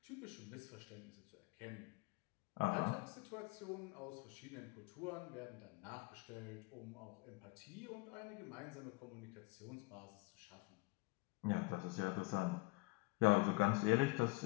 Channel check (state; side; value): quieter; right; 24.3 dB